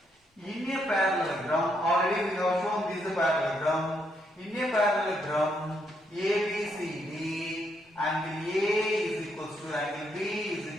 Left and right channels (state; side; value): normal; both; correlation 0.76